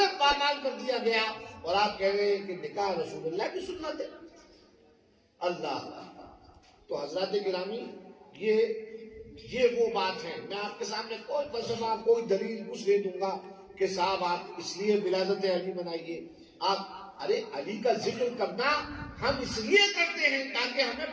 پامال کر دیا گیا اور آپ کہہ رہے ہیں کہ نکاح رسول اللہ کی سنت ہے. اللہ! تو حضرات گرامی، یہ وہ بات ہے. میں آپ کے سامنے کوئی فلسفہ، کوئی دلیل کچھ نہیں دوں گا کہ صاحب آپ اس لیے ولادت علی منائیے. آپ ارے علی کا ذکر کرنا ہم اس لیے کرتے ہیں تاکہ ہمیں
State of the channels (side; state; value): both; identical; correlation 1.00